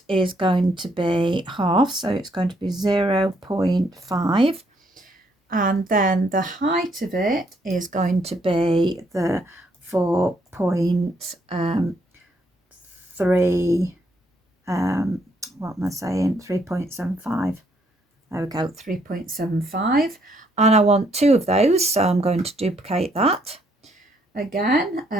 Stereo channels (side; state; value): both; normal; correlation 0.71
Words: is going to be half, so it's going to be 0.5, and then the height of it is going to be the 4.3 what am I saying, 3.75. There we go, 3.75, and I want two of those, so I'm going to duplicate that again.